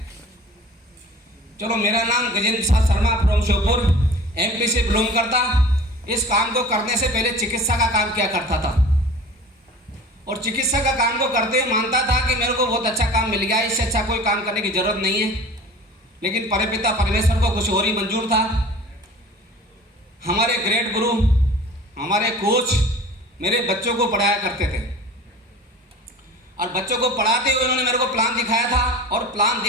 चलो मेरा नाम गजेंद्र प्रसाद शर्मा फ्रॉम श्योपुर MP से बिलोंग करता। इस काम को करने से पहले चिकित्सा का काम किया करता था और चिकित्सा का काम को करते हुए मानता था कि मेरे को बहुत अच्छा काम मिल गया, इससे अच्छा कोई काम करने की जरूरत नहीं है। लेकिन परमपिता परमेश्वर को कुछ और ही मंजूर था। हमारे ग्रेट गुरु, हमारे कोच मेरे बच्चों को पढ़ाया करते थे और बच्चों को पढ़ाते हुए उन्होंने मेरे को प्लान दिखाया था और प्लान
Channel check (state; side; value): normal; both; correlation 0.41